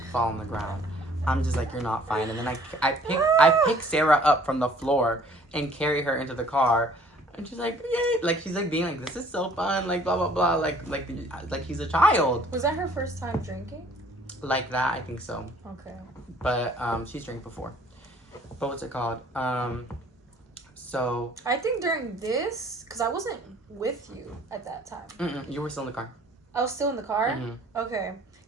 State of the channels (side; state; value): both; normal; correlation 0.56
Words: fall on the ground. I'm just like, you're not fine. And then I pick Sarah up from the floor and carry her into the car. And she's like, yay. Like, she's like being like, this is so fun. Like, blah, blah, blah. Like he's a child. Was that her first time drinking? Like that, I think so. Okay. But she's drank before. But what's it called? So I think during this, because I wasn't with you at that time. You were still in the car. I was still in the car? Mm-hmm. Okay.